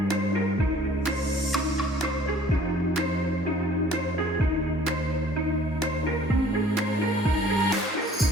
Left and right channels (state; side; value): normal; both; correlation 0.53